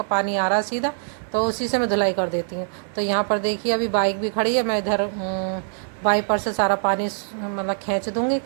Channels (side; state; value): left; silent; digital silence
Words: पानी आ रहा है सीधा, तो उसी से मैं धुलाई कर देती हूँ। तो यहाँ पर देखिए, अभी बाइक भी खड़ी है, मैं इधर वाइपर से सारा पानी मतलब खींच दूँगी।